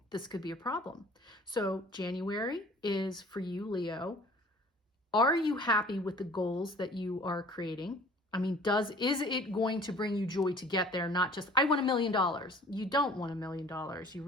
this could be a problem. So January is for you, Leo. Are you happy with the goals that you are creating? I mean, is it going to bring you joy to get there? Not just, I want $1 million. You don't want $1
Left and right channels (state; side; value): normal; both; correlation 0.49